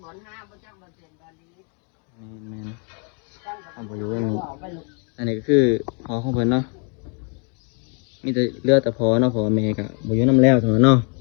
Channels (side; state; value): right; quieter; 38.1 dB